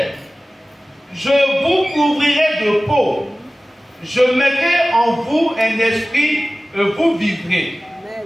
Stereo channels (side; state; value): both; normal; correlation 0.97